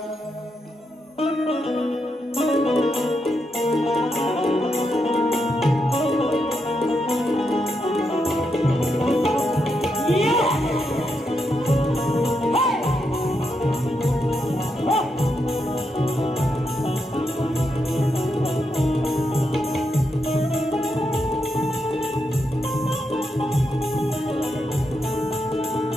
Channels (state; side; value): normal; both; correlation 0.83